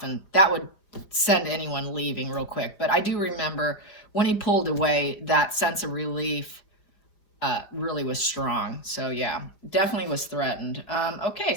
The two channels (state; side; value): late; right; 5.0 ms